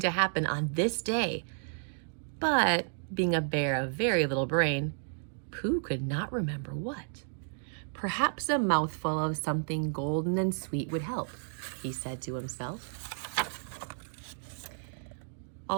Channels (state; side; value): silent; left; digital silence